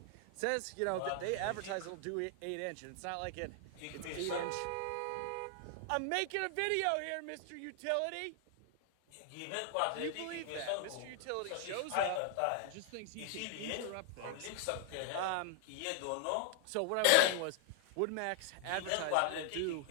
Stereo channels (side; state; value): both; different; correlation 0.00